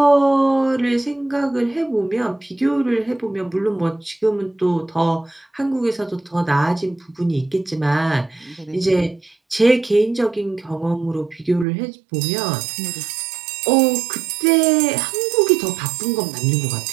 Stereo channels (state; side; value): drops out; left; at 11.7 s